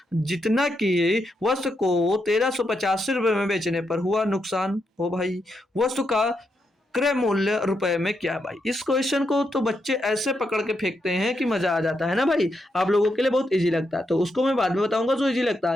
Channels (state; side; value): normal; both; correlation 0.82